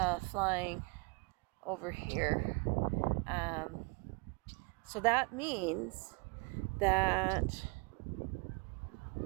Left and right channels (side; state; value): left; quieter; 29.6 dB